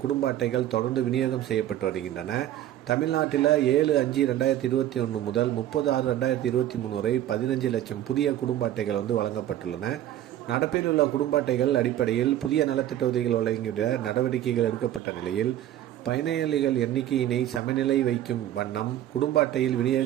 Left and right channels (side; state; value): left; quieter; 12.3 dB